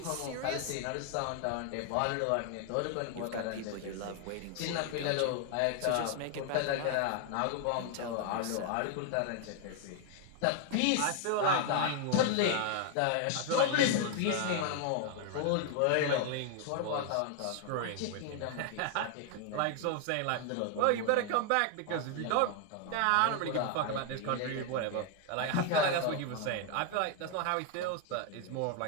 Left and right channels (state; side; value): different; both; correlation 0.00